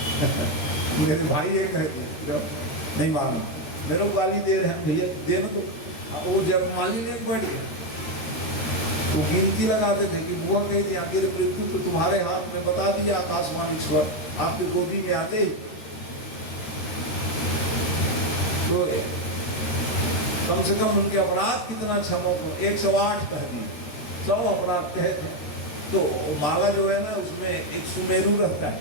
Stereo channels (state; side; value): late; right; 13 ms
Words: मेरे भाई ये कहते नहीं मारो, मेरे को गाली दे रहे हैं भैया, देने दो। वो जब माली ने बैठ गए वो गिनती लगाते थे कि बुआ कही थी आखिर मृत्यु तो तुम्हारे हाथ में, बता दिया आकाशवाणी स्वर आपकी गोदी में आते। तो कम से कम उनके अपराध कितना क्षमो को 108 कह दिए, 100 अपराध कहे थे। तो माला जो है ना उसमें एक सुमेरु रहता है,